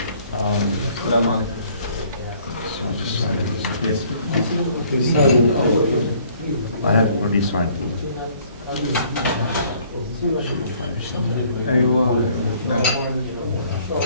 just sign it. Yes. I have already signed. أيوة.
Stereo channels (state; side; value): inverted; both; correlation -0.59